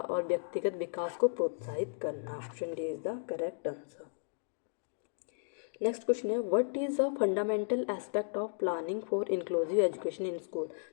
व्यक्तिगत विकास को प्रोत्साहित करना। Option D is the correct answer. Next question है, what is a fundamental aspect of planning for inclusive education in school.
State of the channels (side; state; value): right; silent; digital silence